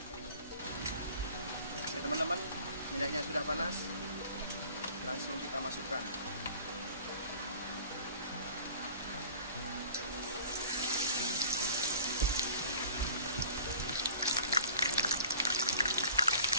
Ya teman-teman, minyaknya sudah panas, langsung kita masukkan.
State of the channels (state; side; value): inverted; both; correlation -0.46